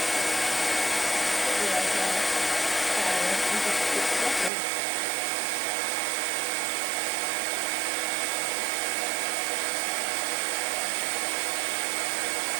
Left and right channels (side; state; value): left; drops out; at 4.5 s